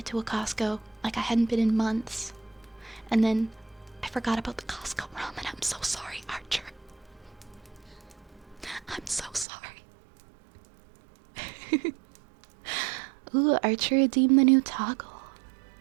to a Costco. Like I hadn't been in months. And then I forgot about the Costco ramen. I'm so sorry, Archer. I'm so sorry. Ooh, Archer redeemed the new toggle.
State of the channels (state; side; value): drops out; left; at 9.5 s